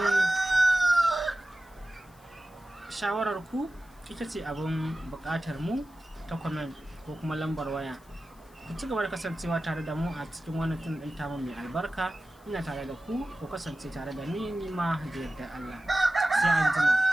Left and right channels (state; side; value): noise; left; hiss, 29 dB below the sound